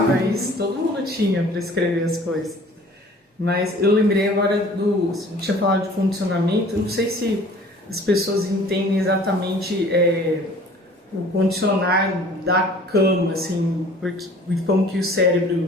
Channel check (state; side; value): normal; both; correlation 0.49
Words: isso, todo mundo tinha para escrever as coisas. Mas eu lembrei agora você tinha falado de condicionamento, não sei se as pessoas entendem exatamente o condicionar da cama, assim, porque como que o